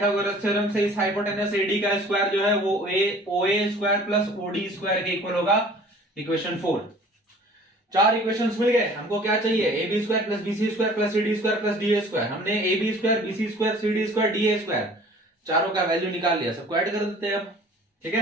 थ्योरम से इस हाइपोटेनस AD का स्क्वायर जो है वो OA square plus OD square के इक्वल होगा, इक्वेशन 4। चार इक्वेशंस मिल गए। हमको क्या चाहिए, AB square plus BC square plus CD square plus DA square. हमने AB square, BC square, CD square, DA square चारों का वैल्यू निकाल लिया, सबको ऐड कर देते हैं अब। ठीक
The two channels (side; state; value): both; normal; correlation 0.49